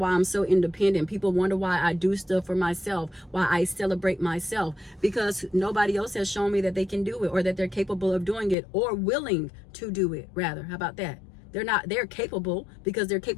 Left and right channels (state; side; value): drops out; right; at 8.6 s